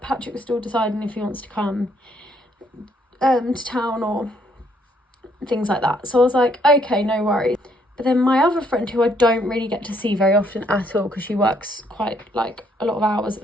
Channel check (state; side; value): normal; both; correlation 0.69